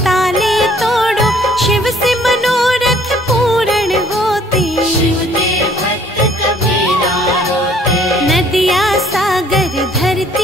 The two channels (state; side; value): normal; both; correlation 0.59